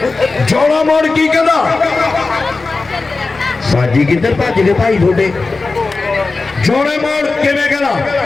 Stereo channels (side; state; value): right; quieter; 3.8 dB